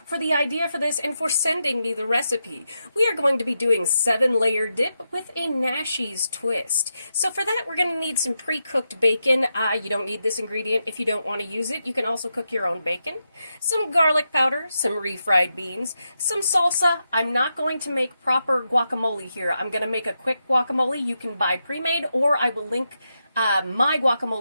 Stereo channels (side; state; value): both; inverted; correlation -0.86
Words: the idea for this and for sending me the recipe. We are going to be doing 7-layer dip with a Nashie's twist. So for that we're going to need some pre-cooked bacon. You don't need this ingredient if you don't want to use it. You can also cook your own bacon. Some garlic powder, some refried beans, some salsa. I'm not going to make proper guacamole here. I'm going to make a quick guacamole. You can buy pre-made, or I will link my